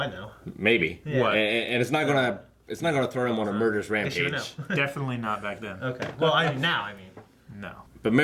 know. maybe. Yeah. And it's not gonna throw him on a murderous Guess you rampage. know. Definitely not back then. Okay. Well, I mean now. No. But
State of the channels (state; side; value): identical; both; correlation 1.00